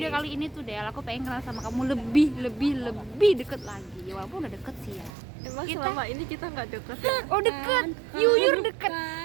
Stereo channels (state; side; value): drops out; left; at 5.1 s